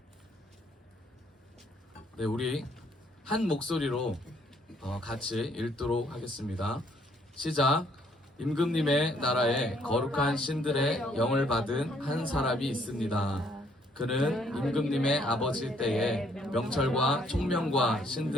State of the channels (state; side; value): normal; both; correlation 0.67